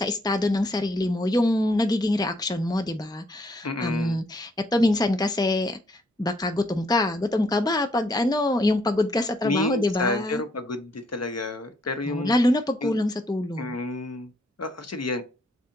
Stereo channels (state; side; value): normal; both; correlation 0.70